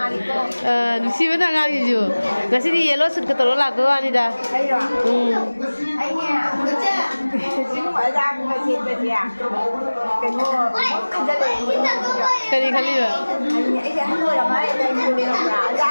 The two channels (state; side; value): inverted; both; correlation -1.00